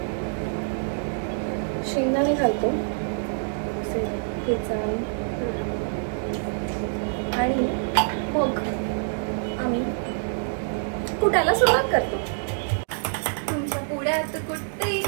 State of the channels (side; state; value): left; silent; digital silence